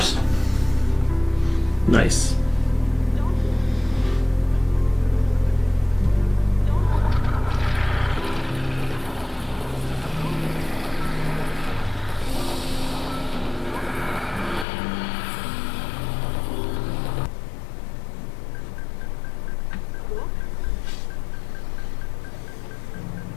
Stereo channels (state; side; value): drops out; right; at 14.7 s